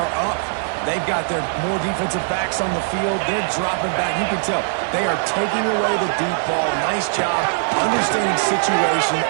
up. They've got their more defensive backs on the field. They're dropping back. You can tell they are taking away the deep ball. Nice job understanding situation,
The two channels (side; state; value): left; silent; 62 dB below the other